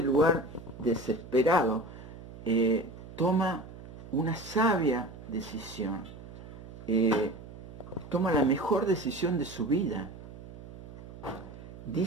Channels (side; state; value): right; noise; hum, 15 dB below the sound